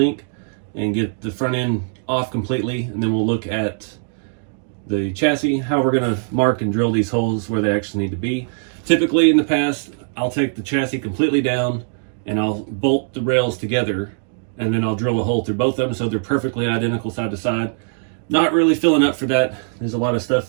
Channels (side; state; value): left; silent; digital silence